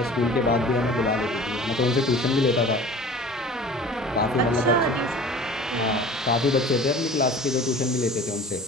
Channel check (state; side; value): normal; both; correlation 0.42